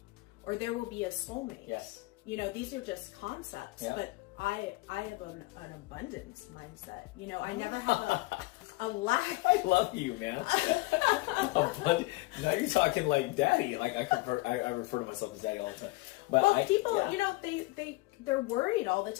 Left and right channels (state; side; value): quieter; right; 21.3 dB